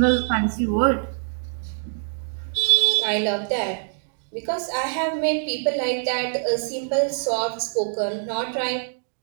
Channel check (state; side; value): silent; left; digital silence